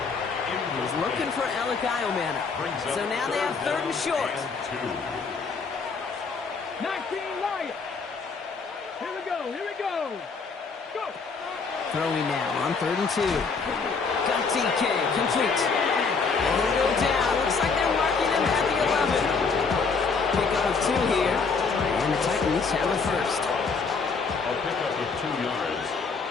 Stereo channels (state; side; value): quieter; right; 4.9 dB